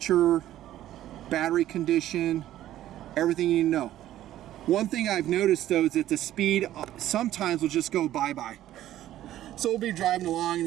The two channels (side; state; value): left; quieter; 13.2 dB